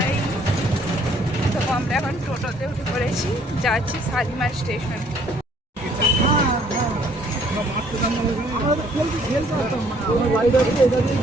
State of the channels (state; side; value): normal; both; correlation 0.62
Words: তো আমরা এখন টোটোতে উঠে পড়েছি, যাচ্ছি শালিমার স্টেশন।